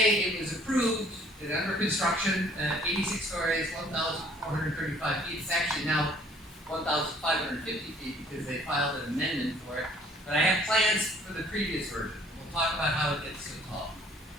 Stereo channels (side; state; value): both; normal; correlation 0.57